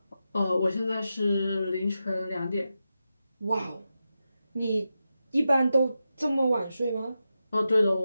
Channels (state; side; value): inverted; both; correlation -0.89